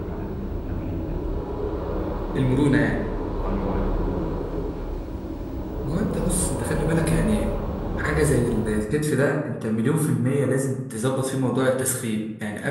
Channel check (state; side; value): identical; both; correlation 1.00